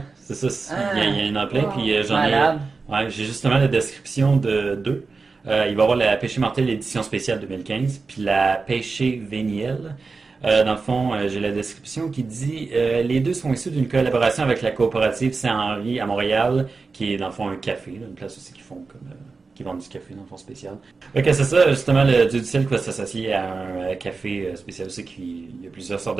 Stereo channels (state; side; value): quieter; left; 4.3 dB